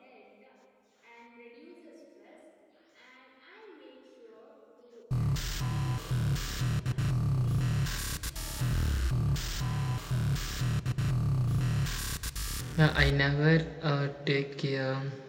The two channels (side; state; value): both; identical; correlation 1.00